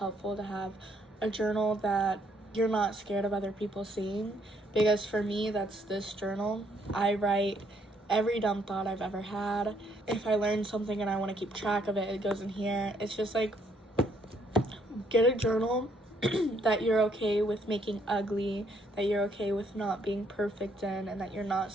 to have a journal that you're not scared of other people seeing, because for me, that's this journal. I write every dumb thought I've ever had. If I learn something and I want to keep track of it, it goes in here. It's just like, get a journal that you're okay with making ugly, that you're okay with not being perfect in, and that you're not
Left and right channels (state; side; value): normal; both; correlation 0.69